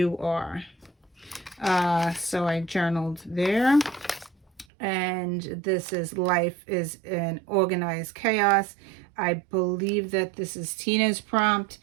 are. So I journaled there. And this is life is an organized chaos. I believe that this is Tina's prompt.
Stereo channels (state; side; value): drops out; left; at 4.7 s